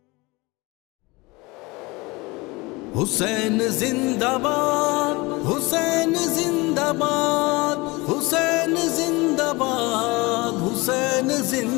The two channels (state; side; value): quieter; right; 24.0 dB